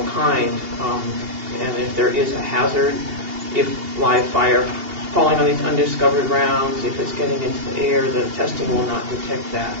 kind. And if there is a hazard, if live fire falling on these undiscovered rounds, if it's getting into the air, the testing will not detect that.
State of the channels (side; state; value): left; late; 2.8 ms